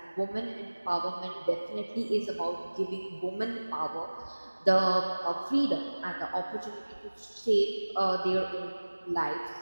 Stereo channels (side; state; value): both; inverted; correlation -1.00